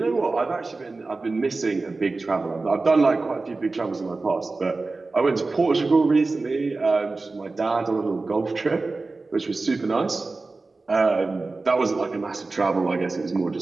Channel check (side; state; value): left; quieter; 3.6 dB